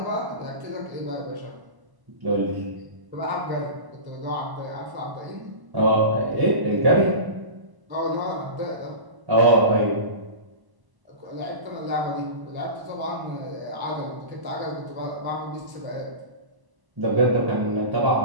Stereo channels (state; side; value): late; left; 1.0 ms